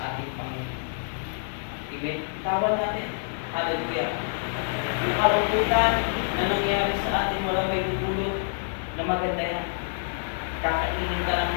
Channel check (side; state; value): right; silent; digital silence